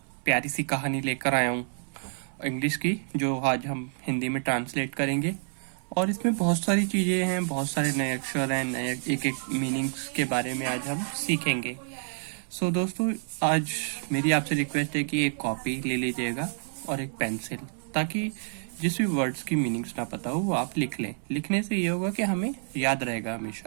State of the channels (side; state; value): left; silent; 59 dB below the other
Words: प्यारी सी कहानी लेकर आया हूँ इंग्लिश की, जो आज हम हिंदी में ट्रांसलेट करेंगे। और इसमें बहुत सारी चीज़ें हैं, बहुत सारे नए अक्षर हैं, नए एक एक मीनिंग्स के बारे में आज हम सीखेंगे। सो दोस्तों, आज मेरी आपसे रिक्वेस्ट है कि एक कॉपी ले लीजिएगा और एक पेंसिल, ताकि जिस भी वर्ड्स की मीनिंग्स ना पता हो वो आप लिख लें। लिखने से ये होगा कि हमें याद रहेगा